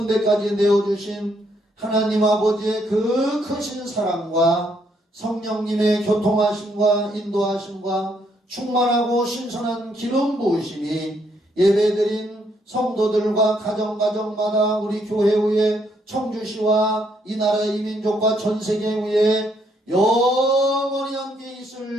데까지 내어주신 하나님 아버지의 그 크신 사랑과 성령님의 교통하심과 인도하심과 충만하고 신선한 기름 부으심이 예배드린 성도들과 가정가정마다 우리 교회 위에 청주시와 이 나라의 이민족과 전세계 위에 영원히 함께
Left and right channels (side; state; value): both; normal; correlation 0.72